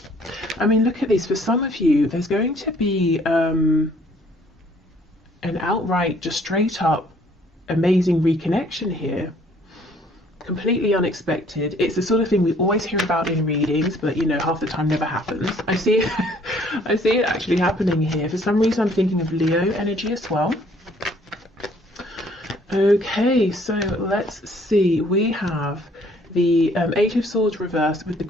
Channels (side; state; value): both; normal; correlation 0.60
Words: I mean, look at this. For some of you, there's going to be an outright, just straight up amazing reconnection here. Completely unexpected. It's the sort of thing we always hear about in readings, but you know, half the time never happens. I see it actually happening here. For some reason I'm thinking of Leo energy as well. Okay, so let's see. We have the Eight of Swords reversed with the